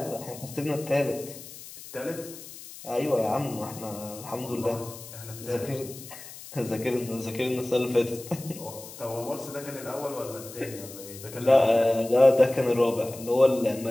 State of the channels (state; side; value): noise; left; hiss, 15 dB below the sound